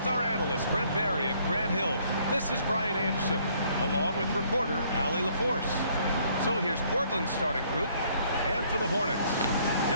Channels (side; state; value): both; inverted; correlation -0.64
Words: our analysts Brent Barry and Grant Hill, this is Brian Anderson, along with reporter Allie LaForce. So here's Portland's starting group, and for the Hornets,